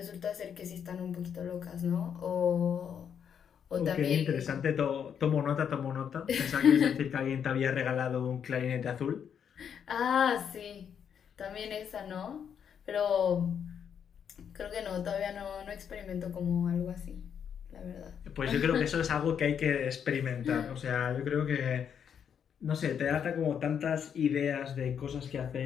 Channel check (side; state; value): right; quieter; 7.9 dB